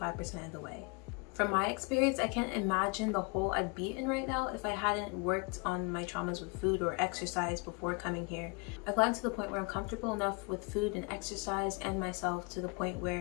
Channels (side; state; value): right; quieter; 31.6 dB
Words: of the way. From my experience, I can't imagine the hole I'd be in right now if I hadn't worked on my traumas with food or exercise before coming here. I've gotten to the point where I'm comfortable enough with food and exercise and myself to the point